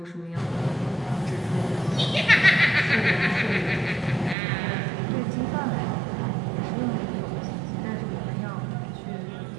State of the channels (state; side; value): drops out; left; at 4.4 s